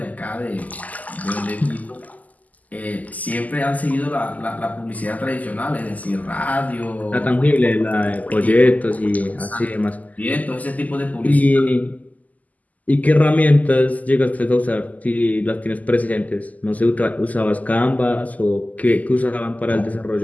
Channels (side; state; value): right; late; 0.078 ms